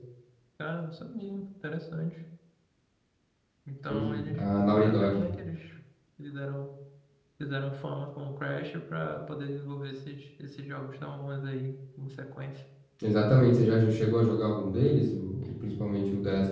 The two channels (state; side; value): identical; both; correlation 1.00